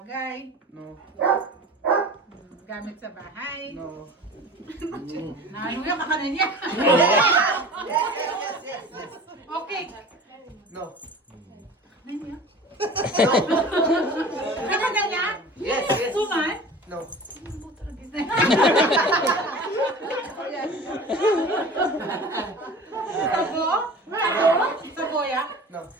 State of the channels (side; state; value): both; normal; correlation 0.39